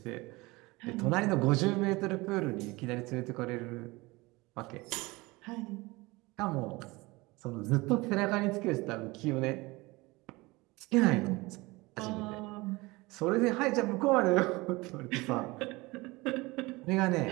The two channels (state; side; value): quieter; left; 22.6 dB